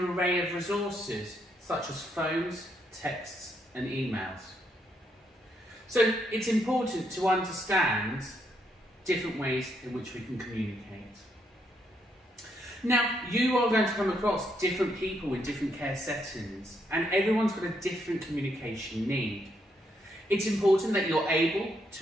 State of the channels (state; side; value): normal; both; correlation 0.76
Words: array of resources, such as phones, texts and emails. So it's important to understand different ways in which we can communicate. Now, you are going to come across different people in different care settings, and everyone's got a different communication need. It's important that you're able